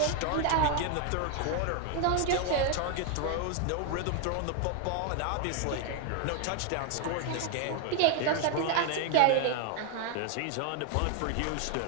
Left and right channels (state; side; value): different; both; correlation 0.01